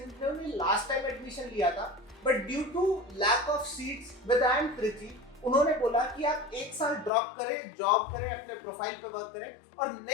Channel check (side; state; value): right; drops out; at 7.1 s